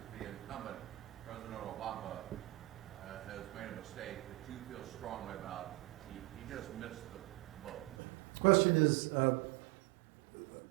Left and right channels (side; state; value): left; drops out; at 8.0 s